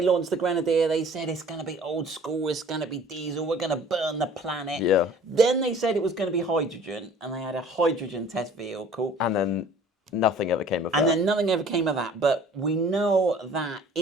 launched the Grenadier, they said it's going to be old school, it's going to be diesel, we're going to burn the planet. Yeah. Then they said it was going to be hydrogen, and they had a hydrogen test vehicle. And then nothing ever came of that. And then nothing ever came of that. But we know that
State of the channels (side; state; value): both; normal; correlation 0.50